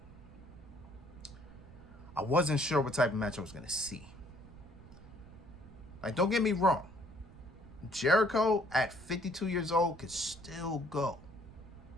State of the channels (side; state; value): right; noise; rumble, 19 dB below the sound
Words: I wasn't sure what type of match I was going to see. Like, don't get me wrong. Jericho at 52 years old could still go.